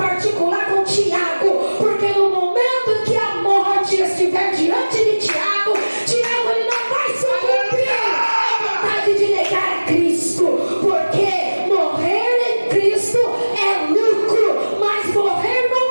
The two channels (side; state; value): both; inverted; correlation -1.00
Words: com Tiago, porque no momento em que a morte estiver diante de Tiago, Tiago, ele não vai sucumbir à vontade de negar a Cristo, porque morrer em Cristo é lucro, mas morrer